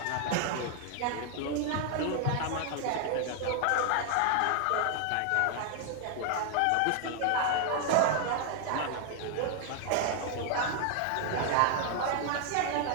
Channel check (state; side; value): different; both; correlation 0.00